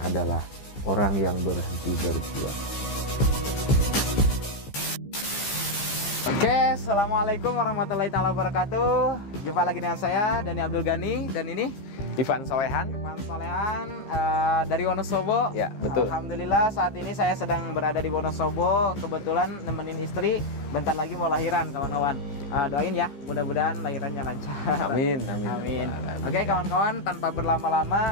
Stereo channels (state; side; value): late; right; 15 ms